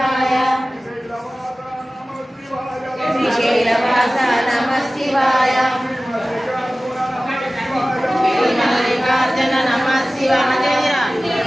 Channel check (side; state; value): both; normal; correlation 0.97